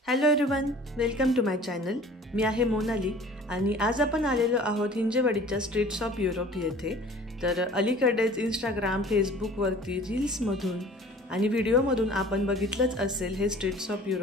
Hello everyone, welcome to my channel. मी आहे मोनाली आणि आज आपण आलेलो आहोत हिंजेवाडीच्या स्ट्रीट्स ऑफ युरोप येथे. तर अलीकडेच इंस्टाग्राम, फेसबुकवरती रील्समधून आणि व्हिडिओमधून आपण बघितलंच असेल हे स्ट्रीट्स ऑफ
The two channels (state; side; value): normal; both; correlation 0.47